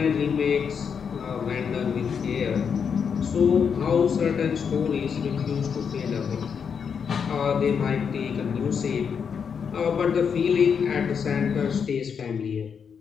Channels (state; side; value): quieter; right; 6.7 dB